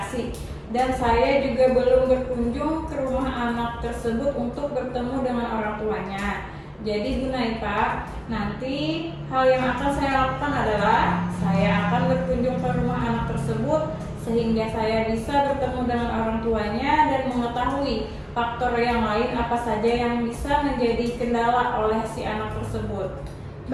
Dan saya juga belum berkunjung ke rumah anak tersebut untuk bertemu dengan orang tuanya. Jadi Bu Naipa, nanti hal yang akan saya lakukan adalah saya akan berkunjung ke rumah anak tersebut sehingga saya bisa bertemu dengan orang tuanya dan mengetahui faktor yang lain apa saja yang bisa menjadi kendala oleh si anak tersebut.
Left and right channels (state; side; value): identical; both; correlation 1.00